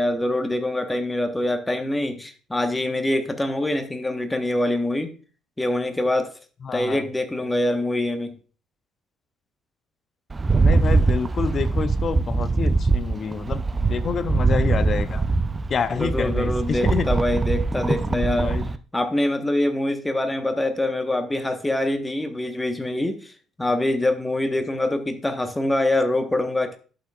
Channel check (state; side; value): normal; both; correlation 0.89